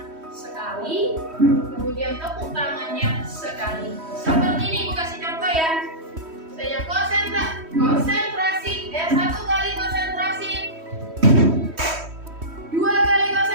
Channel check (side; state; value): left; late; 3.1 ms